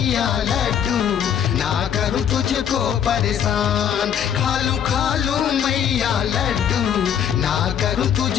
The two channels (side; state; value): right; quieter; 8.8 dB